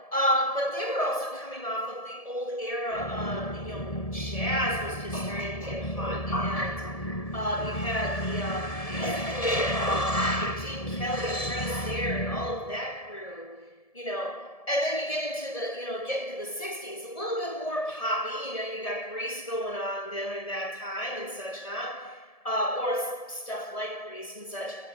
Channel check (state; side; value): late; right; 1.7 ms